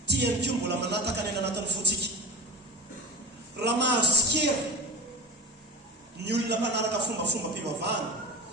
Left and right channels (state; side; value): normal; both; correlation 0.31